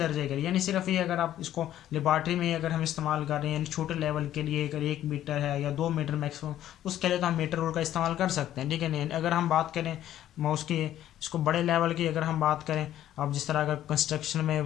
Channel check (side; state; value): right; quieter; 12.2 dB